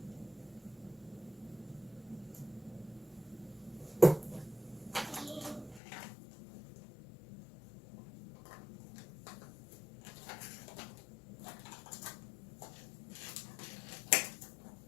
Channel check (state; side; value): drops out; right; at 5.8 s